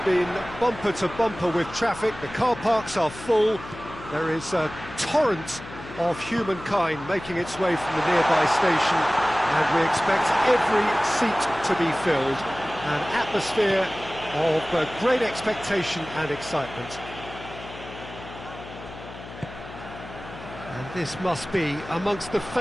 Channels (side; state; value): left; noise; hum, 14 dB below the sound